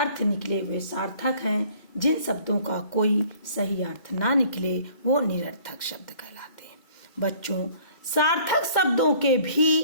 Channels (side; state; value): right; late; 2.1 ms